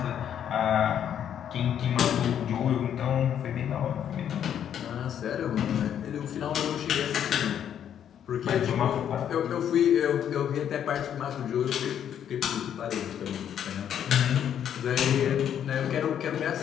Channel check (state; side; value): quieter; right; 9.4 dB